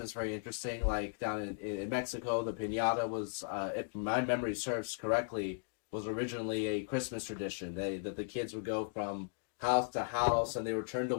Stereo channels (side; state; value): right; silent; digital silence